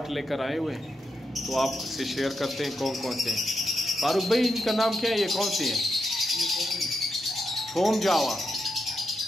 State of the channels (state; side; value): normal; both; correlation 0.84